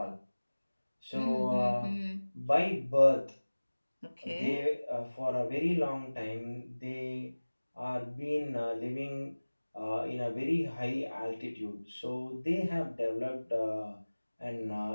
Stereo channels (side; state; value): both; inverted; correlation -1.00